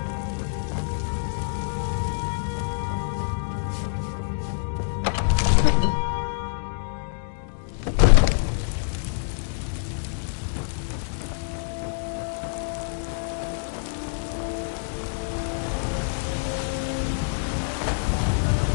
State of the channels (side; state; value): right; silent; digital silence